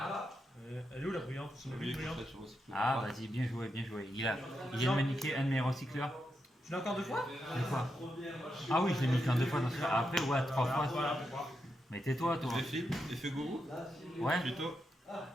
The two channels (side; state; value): both; normal; correlation 0.85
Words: Elle est où la brillante? Oui, comme ça, je recycle. Ah, vas-y, bien joué, bien joué. Il vient de me niquer un de mes recycleurs. Tu l'as encore 2 fois? 2 fois. Ah oui, je l'ai mis qu'en 2 fois dans ce cas. Après, ouais, 3 fois. Voilà, pourquoi? Mais tais-toi, toi. Je vais flip, effet gourou. Ouais. Plutôt.